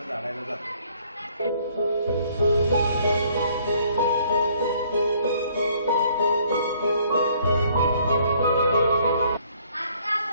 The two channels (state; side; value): inverted; both; correlation -0.62